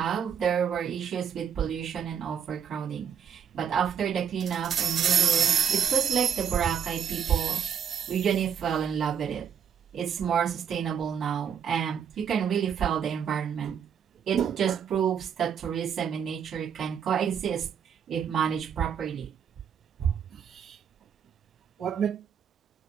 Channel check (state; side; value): quieter; left; 7.8 dB